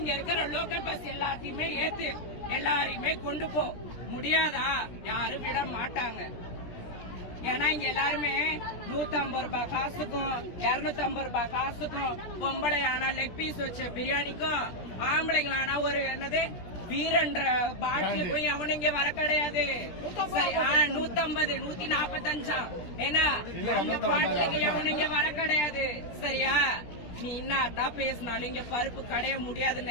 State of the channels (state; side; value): late; right; 17 ms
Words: இருக்கிற லோக்கல் பஸ் எல்லாத்தையுமே ஏத்து எல்லாரையுமே கொண்டு போ. முடியாதா? யாரும் விட மாட்டாங்க. ஏன்னா இங்க எல்லாருமே 150 ரூபாய் காசுக்கும் 250 ரூபாய் காசுக்கும், பொம்பளை ஆனா லெக் பீஸ் வச்ச பிரியாணிக்கும், ஆம்பளைங்களானா ஒரு என்னது வீரன்ற பாட்டிலுக்கும் எவனும் இங்க வர கிடையாது. 150 145 ஏன்னா அந்த பாட்டிலுக்கு எவனும் இங்க வர கிடையாது. சரியா? நீ என்னதான் பேசினாலும் இங்க பருப்பு கடைய